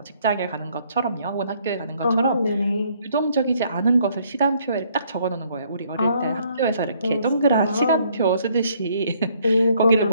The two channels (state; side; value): inverted; both; correlation -0.66